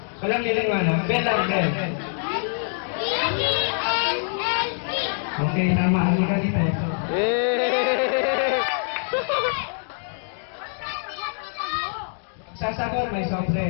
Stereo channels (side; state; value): right; silent; digital silence